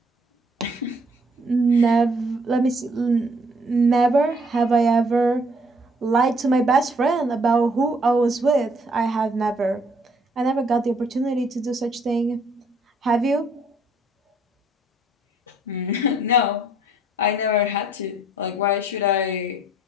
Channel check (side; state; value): both; normal; correlation 0.64